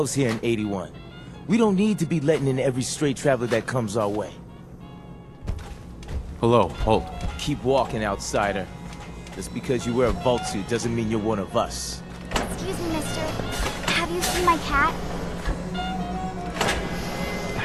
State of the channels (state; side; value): identical; both; correlation 1.00